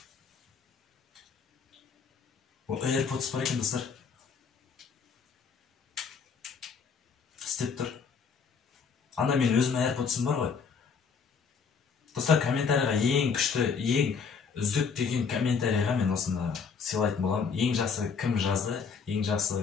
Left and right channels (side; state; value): right; quieter; 5.8 dB